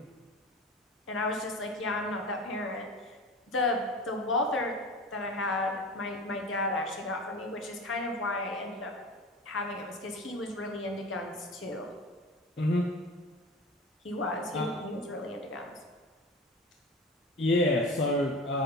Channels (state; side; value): normal; both; correlation 0.33